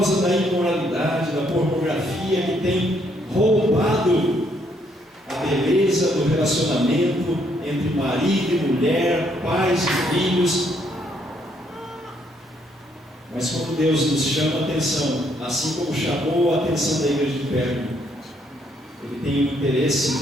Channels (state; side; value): normal; both; correlation 0.71